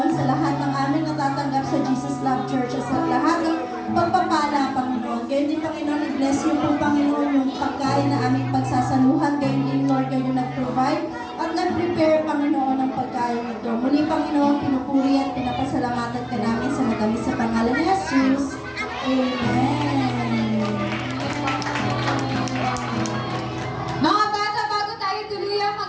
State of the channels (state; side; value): identical; both; correlation 1.00